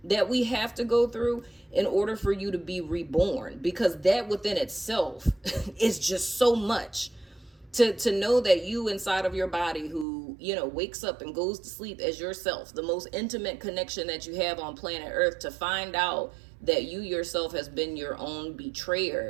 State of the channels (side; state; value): left; drops out; at 10.1 s